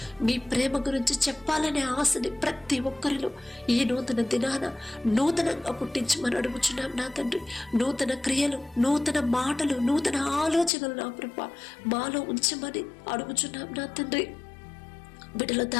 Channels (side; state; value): right; drops out; at 10.7 s